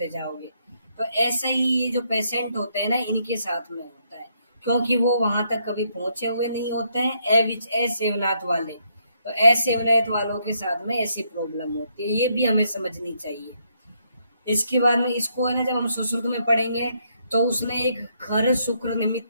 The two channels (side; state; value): both; inverted; correlation -0.74